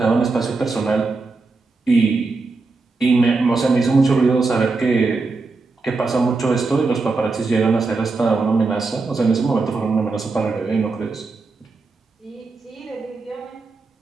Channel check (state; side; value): quieter; left; 3.9 dB